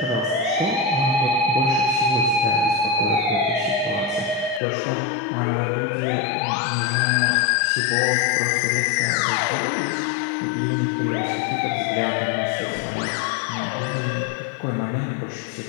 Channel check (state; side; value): drops out; right; at 4.6 s